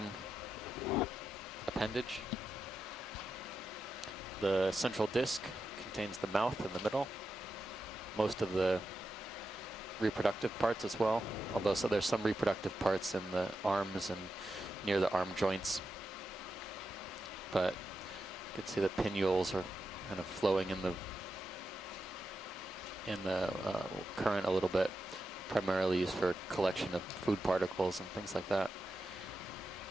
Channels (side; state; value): both; normal; correlation 0.88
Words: appendage. The central disc contains the mouth in the middle. Most of the reproductive parts as well, although so there's some reproductive parts in the arms and near the arm joints. But you can see the pinnules are kind of flowing in the current a little bit, primarily used for collection of food particles and things like that.